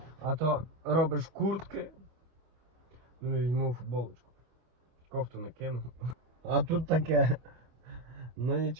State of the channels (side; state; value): left; late; 26 ms